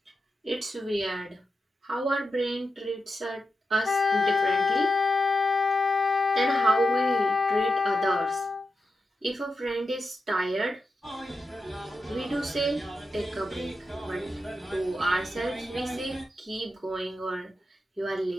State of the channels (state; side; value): normal; both; correlation 0.88